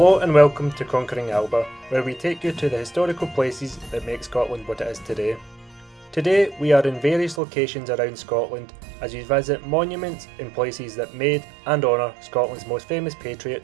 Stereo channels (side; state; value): left; drops out; at 7.4 s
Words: and welcome to Conquering Alba, where we take you to the historical places that make Scotland what it is today. Today we are in various locations around Scotland as we visit monuments in places that made and honour Scotland's most famous